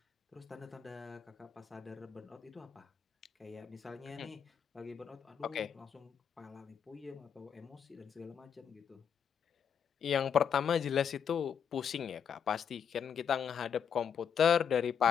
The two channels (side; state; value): right; quieter; 7.7 dB